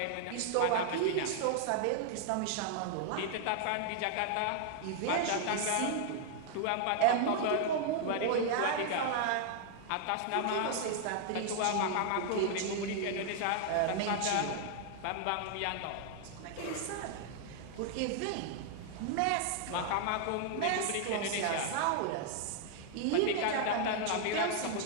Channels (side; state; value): both; different; correlation 0.00